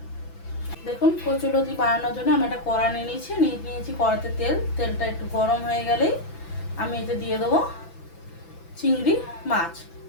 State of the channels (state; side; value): late; right; 6.0 ms